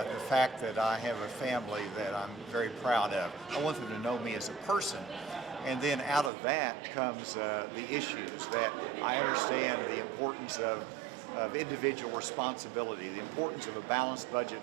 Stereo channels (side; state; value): left; drops out; at 6.3 s